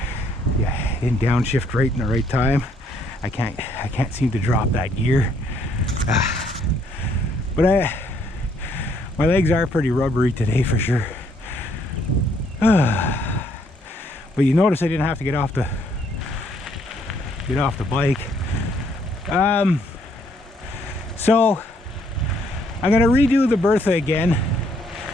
Yeah, didn't downshift right in the right time. I can't seem to drop that gear. But my legs are pretty rubbery today for sure. But you notice I didn't have to get off the bike. So I'm gonna redo the Bertha again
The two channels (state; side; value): normal; both; correlation 0.68